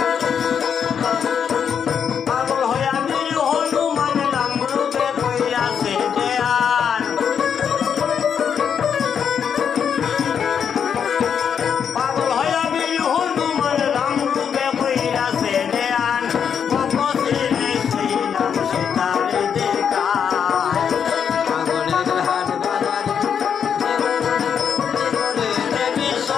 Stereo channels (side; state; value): right; quieter; 7.5 dB